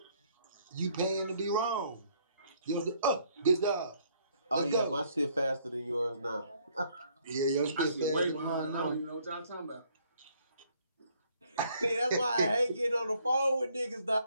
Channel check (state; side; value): inverted; both; correlation -0.65